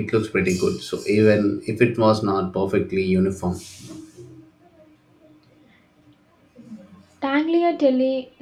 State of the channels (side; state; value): both; identical; correlation 1.00